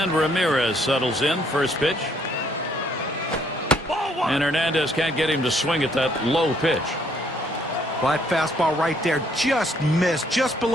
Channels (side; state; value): both; normal; correlation 0.67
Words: Ramirez settles in. First pitch. And Hernandez can't get him to swing at that low pitch. Well, that fastball right there just missed, just